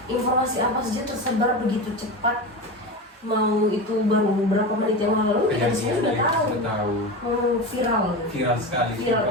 informasi apa saja tersebar begitu cepat. Mau itu baru beberapa menit yang lalu kita semua sudah tahu. Viral. Viral sekali. Viral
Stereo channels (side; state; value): both; normal; correlation 0.24